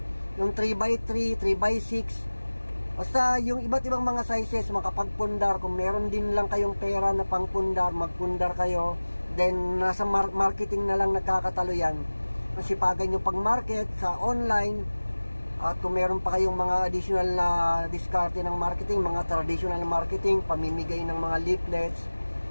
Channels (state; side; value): inverted; both; correlation -1.00